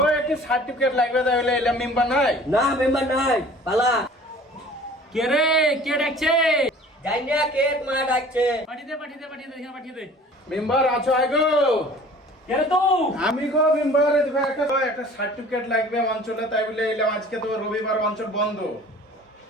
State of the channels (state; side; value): normal; both; correlation 0.47